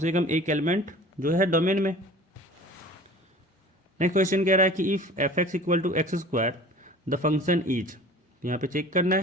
कम एक एलिमेंट जो है डोमेन में। नेक्स्ट क्वेश्चन कह रहा है कि if f x equal to x square the function is, यहाँ पे चेक करना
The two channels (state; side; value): normal; both; correlation 0.43